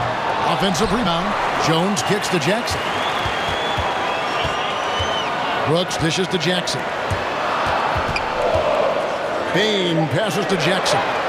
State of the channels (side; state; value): both; identical; correlation 1.00